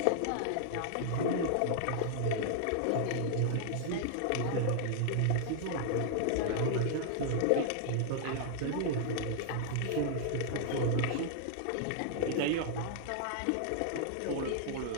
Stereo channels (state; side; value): different; both; correlation -0.01